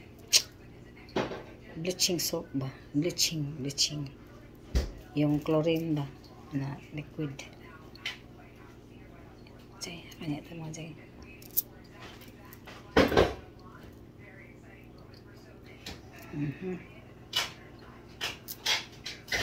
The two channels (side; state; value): both; identical; correlation 1.00